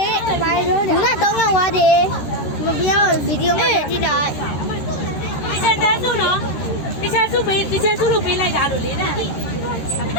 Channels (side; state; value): right; late; 13 ms